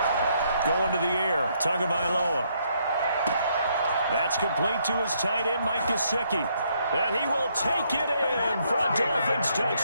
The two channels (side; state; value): both; inverted; correlation -0.72